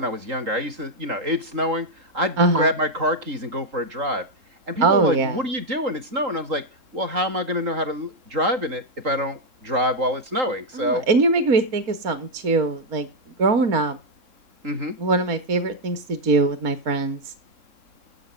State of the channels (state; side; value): late; left; 3.8 ms